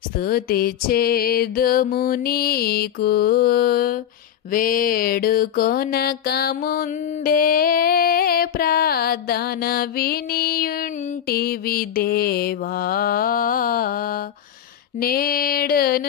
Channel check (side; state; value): right; quieter; 9.7 dB